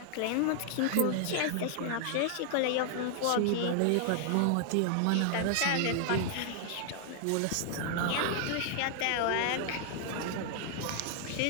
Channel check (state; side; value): different; both; correlation 0.00